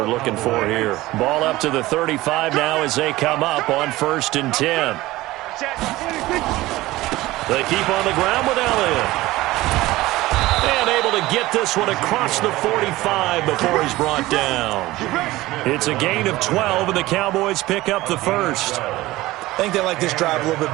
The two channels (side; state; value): left; quieter; 18.0 dB